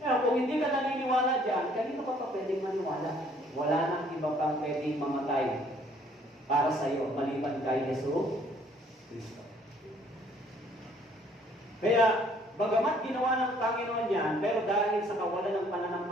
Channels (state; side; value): normal; both; correlation 0.61